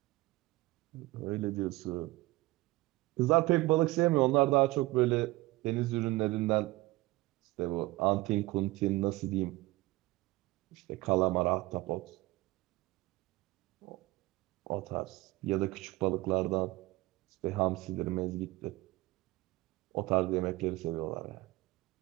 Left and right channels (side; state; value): left; quieter; 20.3 dB